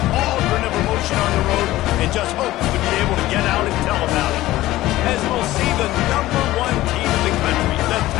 cauldron of emotion on the road and just hopes to be able to get out and tell about it. As we'll see the #1 team in the country, the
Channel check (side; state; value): right; quieter; 16.4 dB